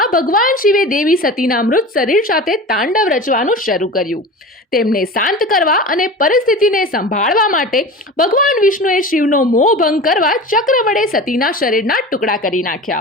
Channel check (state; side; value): normal; both; correlation 0.33